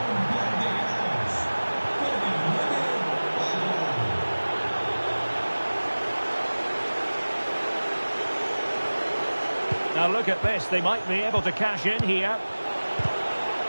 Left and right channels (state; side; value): inverted; both; correlation -1.00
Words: Now look at this. They might be able to cash in here.